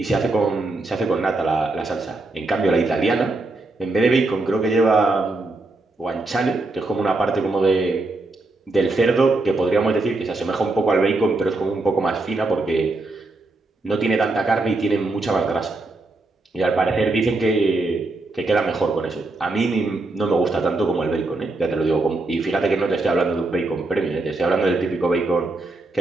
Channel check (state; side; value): quieter; left; 3.1 dB